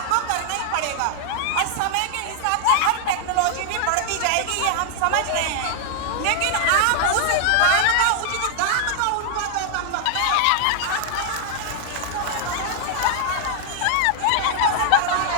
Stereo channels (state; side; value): different; both; correlation 0.00